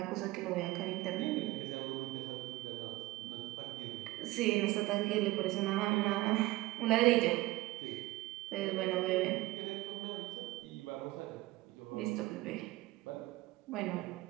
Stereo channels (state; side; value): quieter; left; 18.6 dB